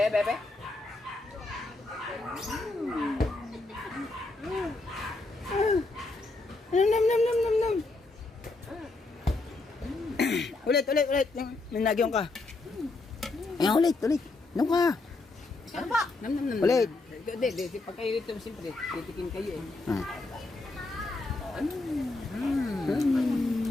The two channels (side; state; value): right; quieter; 3.3 dB